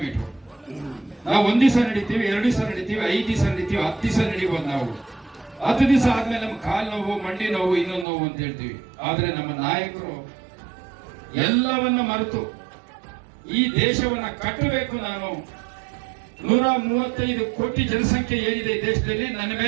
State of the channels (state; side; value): drops out; left; at 8.1 s